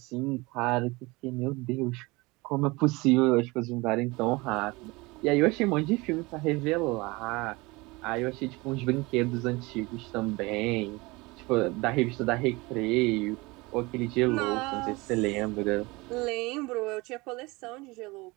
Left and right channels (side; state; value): left; quieter; 23.8 dB